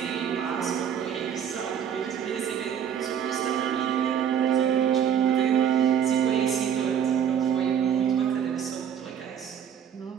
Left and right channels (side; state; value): left; quieter; 8.6 dB